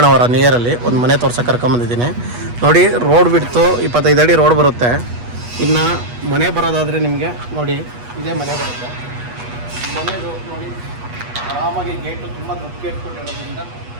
ನಿಯರಲ್ಲಿ ಒಂದು ಮನೆ ತೋರ್ಸಕ್ಕೆ ಕರ್ಕೊಂಬಂದಿದ್ದೀನಿ. ನೋಡಿ, ರೋಡ್ ಬಿಡ್ತು 25 ಅಡಿ ರೋಡ್ ಬರುತ್ತೆ. ಇನ್ನು ಮನೆ ಬರೋದಾದರೆ ನಿಮಗೆ ನೋಡಿ ಇದೇ ಮನೆ ಬರುತ್ತೆ. ಮನೆದು ನೋಡಿ ಆರಾಮಾಗಿ ಗೇಟು ತುಂಬ ದೊಡ್ಡ ಗೇಟ್ ಕೊಟ್ಟಿರೋದ್ರಿಂದ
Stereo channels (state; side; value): late; left; 8.3 ms